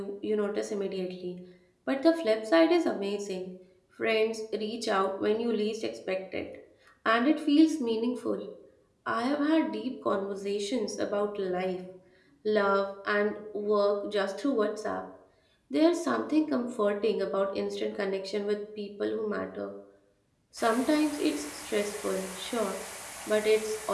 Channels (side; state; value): both; identical; correlation 1.00